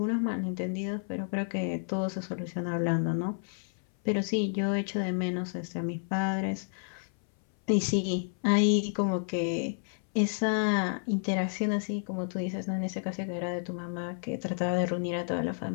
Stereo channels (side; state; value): right; silent; 57 dB below the other